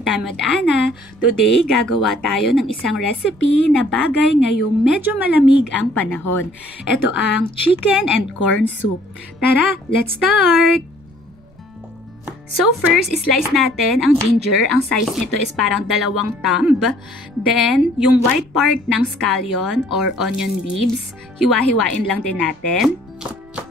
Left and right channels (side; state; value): right; noise; rumble, 29 dB below the sound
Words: Time with Ana. Today, gagawa tayo ng isang recipe na bagay ngayong medyo malamig ang panahon. Ito ang chicken and corn soup. Tara, let's start! So first, slice natin ang ginger. Ang size nito is parang 2 thumb. Then, yung white part ng scallion or onion leaves, hiwa-hiwain lang din natin.